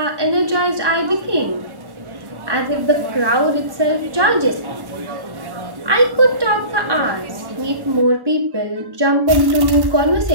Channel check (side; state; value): left; late; 1.1 ms